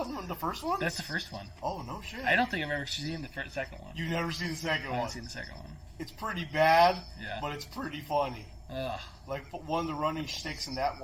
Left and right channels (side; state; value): both; identical; correlation 1.00